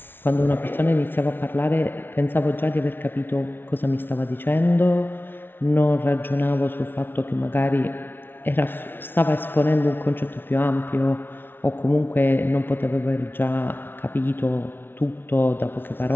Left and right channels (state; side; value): late; right; 0.10 ms